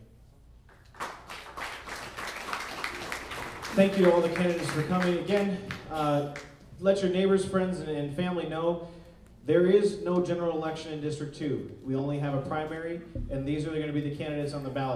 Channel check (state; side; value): identical; both; correlation 1.00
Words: Thank you to all the candidates for coming. Again, let your neighbors, friends, and family know there is no general election in District 2. We only have a primary, and these are going to be the candidates on the